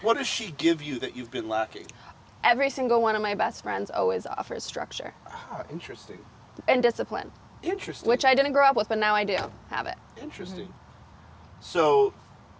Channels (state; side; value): identical; both; correlation 1.00